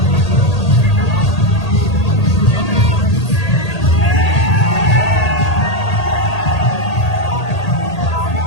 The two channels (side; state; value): right; late; 1.8 ms